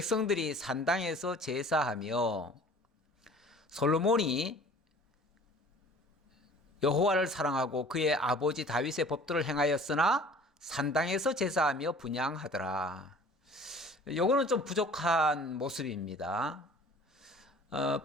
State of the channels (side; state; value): both; normal; correlation 0.48